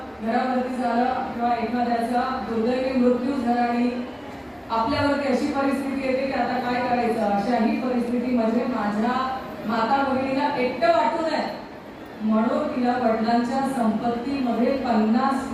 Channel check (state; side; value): identical; both; correlation 1.00